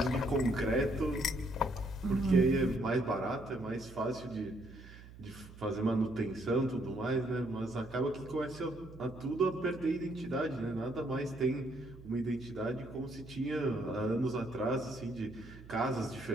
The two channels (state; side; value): noise; right; hum, 17 dB below the sound